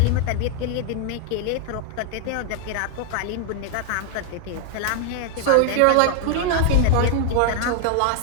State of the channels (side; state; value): both; different; correlation 0.00